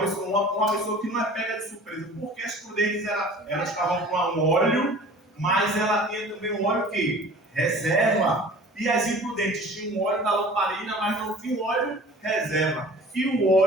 que não é pega de surpresa. Porque as prudentes elas estavam com um óleo, mas ela tinha também um óleo que? Reserva. E as imprudentes tinham um óleo da lamparina, mas não tinham óleo reserva. E o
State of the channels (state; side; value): normal; both; correlation 0.44